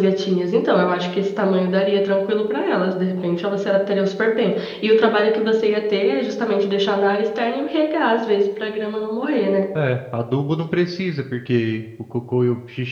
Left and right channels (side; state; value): both; identical; correlation 1.00